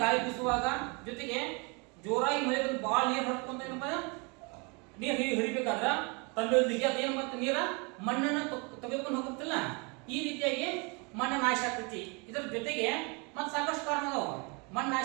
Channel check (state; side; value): quieter; left; 31.3 dB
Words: ಗಾಳಿ ಬೀಸುವಾಗ, ಜೊತೆಗೆ ಜೋರಾಗಿ ಮಳೆ ಬಂದು ಬಾಳ ನೀರು ಹರ್ಕೊಂತ ಏನಪ್ಪ ನೀರು ಹರಿಬೇಕಾದ್ರ ತಂಡೊಂದಿಗೆ ಅದೇನು ಮತ್ತೆ ನೀರ ಮಣ್ಣನ್ನು ತೆಗೆದುಕೊಂಡು ಹೋಗುತ್ತಿಲ್ಲ. ಈ ರೀತಿಯಾಗಿ ಮಣ್ಣು ನಾಶ ಆಗ್ತೈತಿ. ಇದರ ಜೊತೆಗೆ ಮತ್ತೆ ಸಾಕಷ್ಟು ಕಾರಣ ಅದಾವ ಮಣ್ಣು